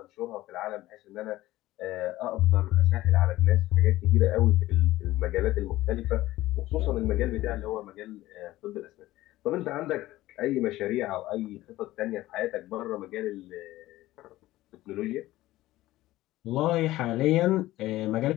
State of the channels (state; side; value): quieter; right; 16.5 dB